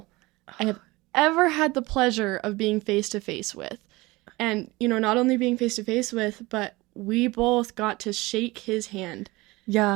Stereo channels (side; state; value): left; quieter; 21.8 dB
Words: I have ever had the pleasure of being face to face with. And, not only being face to face with, but we both got to shake his hand. Yeah.